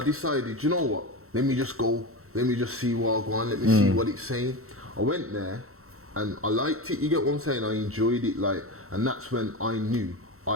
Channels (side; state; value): left; late; 0.63 ms